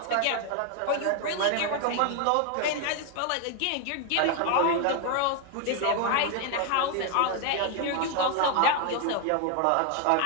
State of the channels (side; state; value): both; different; correlation 0.01